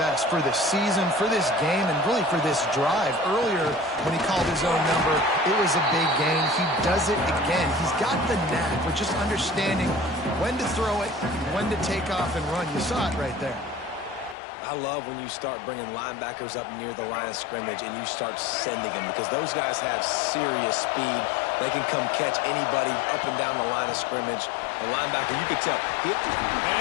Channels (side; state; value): right; drops out; at 14.4 s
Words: for this season, for this game, and really for this drive. Earlier, when he called his own number, it was a big gain. He does it again. He's got the knack for just understanding when to throw it, when to take off and run. You saw it right there. I love when you start bringing linebackers up near the line of scrimmage and you start sending them because those guys have serious speed. They can come catch anybody up and down the line of scrimmage. A linebacker, you could tell.